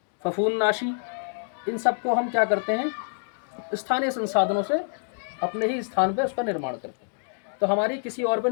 फफूंदनाशी, इन सब को हम क्या करते हैं, स्थानीय संसाधनों से अपने ही स्थान पे उसका निर्माण करते हैं। तो हमारी किसी और पर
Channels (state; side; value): silent; right; digital silence